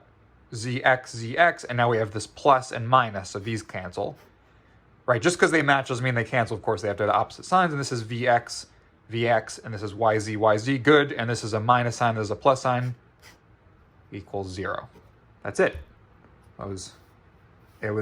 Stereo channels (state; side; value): identical; both; correlation 1.00